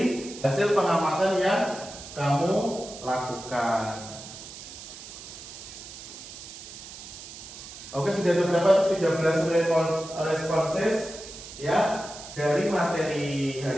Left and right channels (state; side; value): noise; right; hiss, 13 dB below the sound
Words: hasil pengamatan yang kamu lakukan? Oke, sudah ada berapa? 13 responses ya dari materi